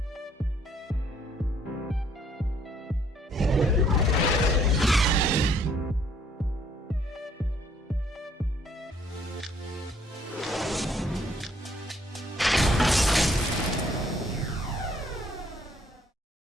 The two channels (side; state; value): both; normal; correlation 0.64